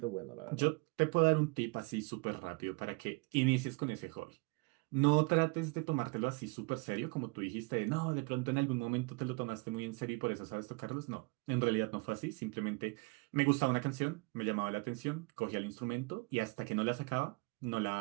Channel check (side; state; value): left; quieter; 28.8 dB